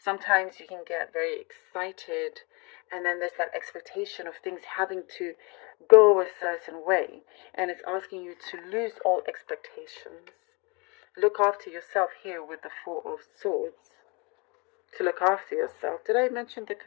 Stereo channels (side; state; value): right; quieter; 29.8 dB